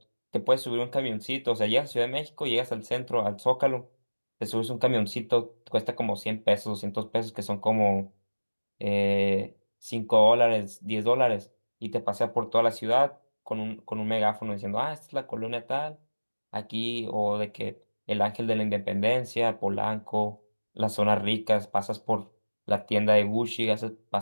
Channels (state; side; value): inverted; both; correlation -1.00